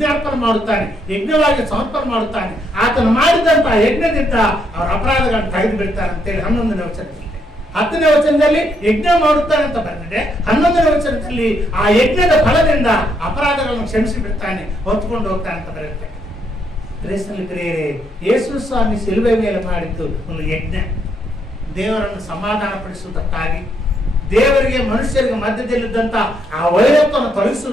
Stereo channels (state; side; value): normal; both; correlation 0.75